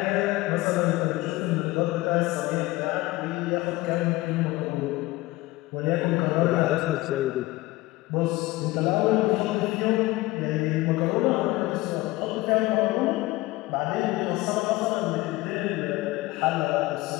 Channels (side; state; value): right; quieter; 19.6 dB